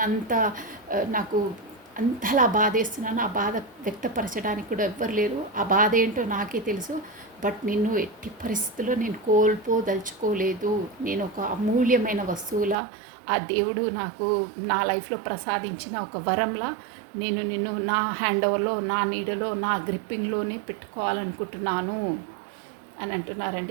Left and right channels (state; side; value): drops out; left; at 12.8 s